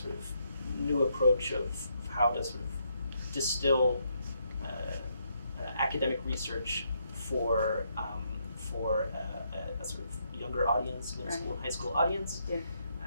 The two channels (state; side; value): inverted; both; correlation -0.76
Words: of new approach of how to sort of distill academic research for a sort of younger audience, middle school and high school audience. Yeah.